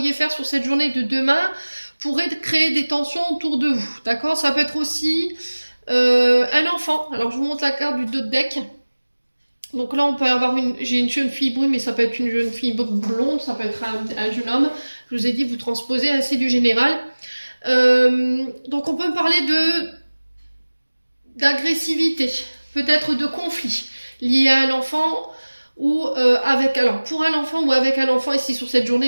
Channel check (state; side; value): inverted; both; correlation -1.00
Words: faire sur cette journée de demain pourraient créer des tensions autour de vous. D'accord? Ça peut être aussi un enfant. Alors, je vous montre la carte du dos de deck. Donc là, on peut avoir j'ai une jeune fille brune, mais ça peut être une jeune fille blonde, ça peut être un jeune homme. Je vous ai dit, vous transposez assez du général. Donc on peut parler d'agressivité, peut-être de conflit lié à un enfant ou pour un enfant ou avec un enfant ici sur cette